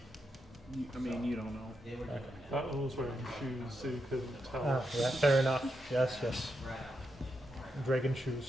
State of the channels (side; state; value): both; normal; correlation 0.84